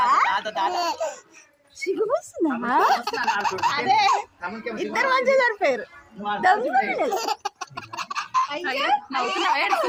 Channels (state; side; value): identical; both; correlation 1.00